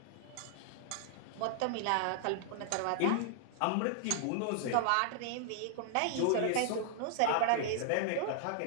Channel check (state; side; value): different; both; correlation -0.01